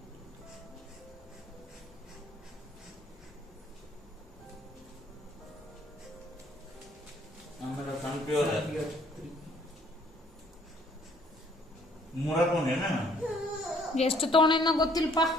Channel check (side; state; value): both; normal; correlation 0.62